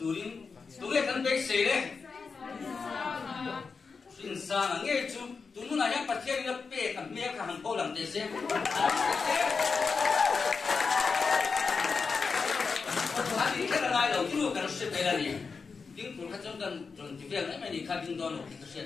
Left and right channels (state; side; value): quieter; right; 5.0 dB